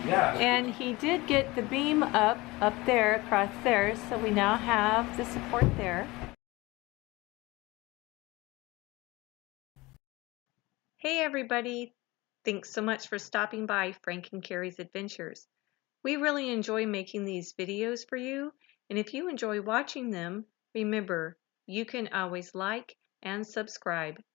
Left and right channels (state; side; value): quieter; right; 21.7 dB